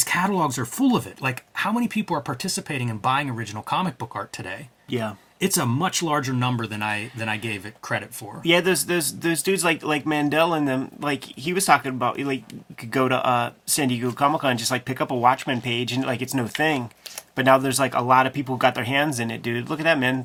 catalogs are full of it. Like, how many people are participating in buying original comic book art today? Yeah. It's a much larger number than I gave it credit for. Yeah, those dudes like Mandel and them, like he was talking about, like you could go to San Diego Comic Con, just like pick up a Watchmen page and like it's no thing. But now there's like a lot of people who got their hands in it, dude. Look at that,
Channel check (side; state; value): both; identical; correlation 1.00